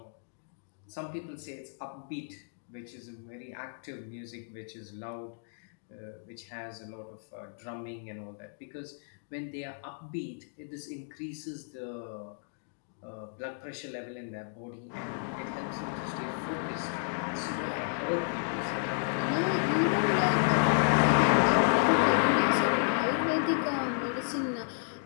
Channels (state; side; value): silent; right; digital silence